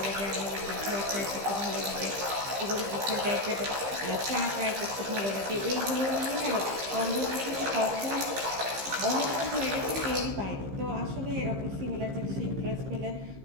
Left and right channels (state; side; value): late; left; 15 ms